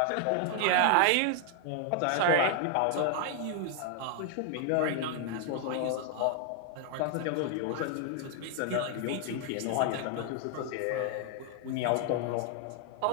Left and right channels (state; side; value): different; both; correlation 0.00